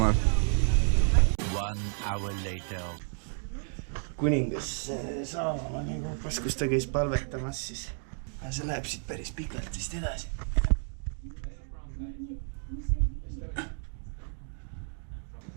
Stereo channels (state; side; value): silent; left; 57 dB below the other